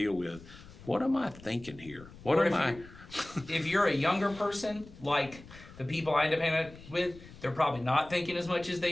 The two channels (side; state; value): left; noise; rumble, 19 dB below the sound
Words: with. What am I thinking here? If you're a younger person, like the people I end up hanging out with, they're probably not thinking as much as they